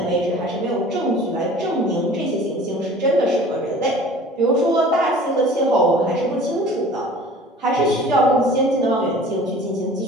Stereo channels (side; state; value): both; normal; correlation 0.45